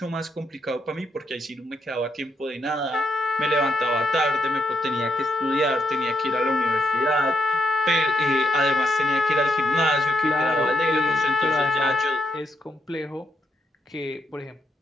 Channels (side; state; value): both; normal; correlation 0.79